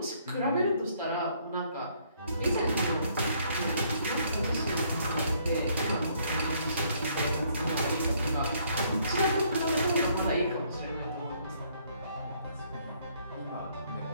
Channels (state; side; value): inverted; both; correlation -0.66